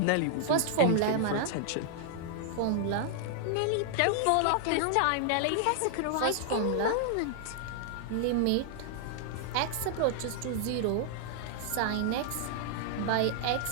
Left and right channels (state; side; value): different; both; correlation -0.01